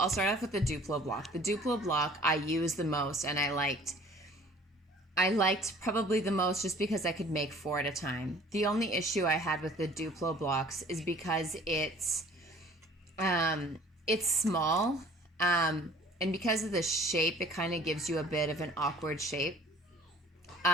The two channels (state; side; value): normal; both; correlation 0.51